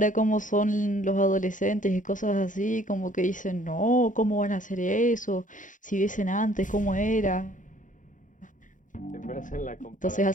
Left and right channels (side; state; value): right; late; 0.37 ms